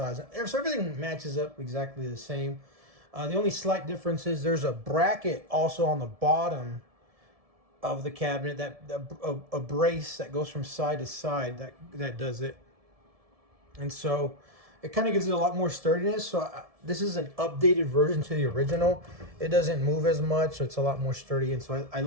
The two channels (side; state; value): left; late; 1.7 ms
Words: So everything matches up exactly the same. The only slight difference is there's a bracket also on the bottom of the cabinet, a brace that goes from side to side that does it. And so it kind of gives it a lot more sturdiness. So this is an updated version to the original. It doesn't move as much, so it's a lot more sturdy. And so I